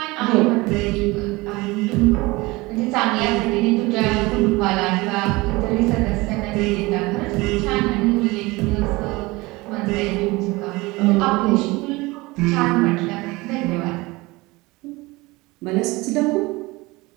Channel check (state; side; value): quieter; left; 22.4 dB